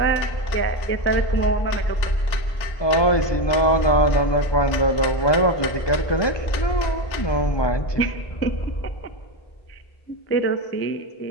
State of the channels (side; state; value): right; late; 1.8 ms